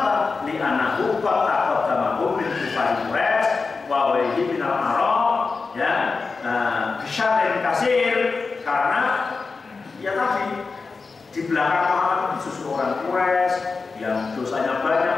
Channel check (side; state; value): right; quieter; 4.4 dB